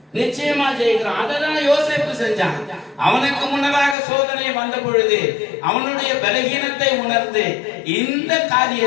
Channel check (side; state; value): right; drops out; at 4.0 s